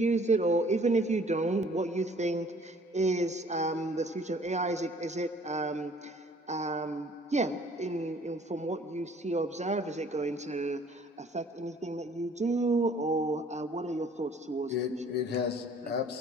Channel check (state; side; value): normal; both; correlation 0.56